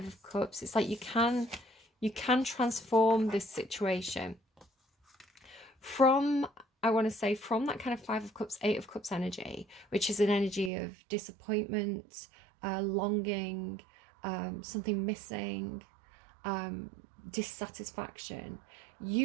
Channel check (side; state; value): left; drops out; at 10.7 s